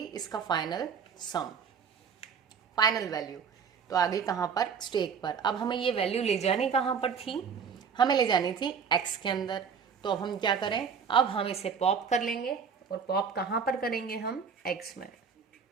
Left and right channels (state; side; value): quieter; left; 6.4 dB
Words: इसका फाइनल सम, फाइनल वैल्यू। तो आ गई कहाँ पर, स्टैक पर। अब हमें ये वैल्यू ले जानी कहाँ पर थी, हमें ले जानी थी एक्स के अंदर। तो अब हम क्या करें, अब हम इसे पॉप कर लेंगे, और पॉप कहाँ पर करेंगे हम, एक्स में।